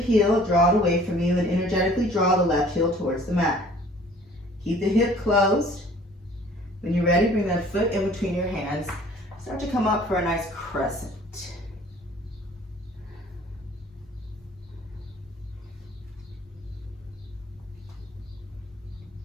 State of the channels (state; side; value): normal; both; correlation 0.52